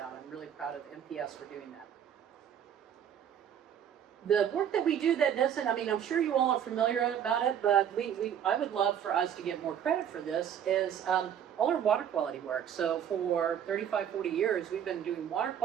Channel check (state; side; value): quieter; left; 9.2 dB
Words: I'm really proud of MPS for doing that. The work that we do that doesn't, I'm sure you all are familiar about it, but I would love for us to get more credit for this, is all our water quality work. So for 35, 40 years, we've been doing water